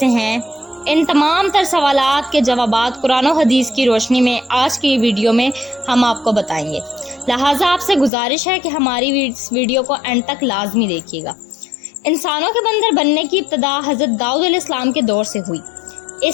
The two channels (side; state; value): right; drops out; at 8.1 s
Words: ہیں۔ ان تمام تر سوالات کے جوابات قرآن و حدیث کی روشنی میں آج کی ویڈیو میں ہم آپ کو بتائیں گے، لہٰذا آپ سے گزارش ہے کہ ہماری اس ویڈیو کو اینڈ تک لازمی دیکھیے گا۔ انسانوں کے بندر بننے کی ابتدا حضرت داؤد علیہ السلام کے دور سے ہوئی۔